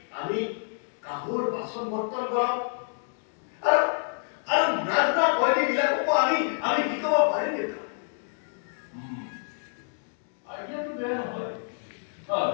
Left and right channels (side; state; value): right; silent; digital silence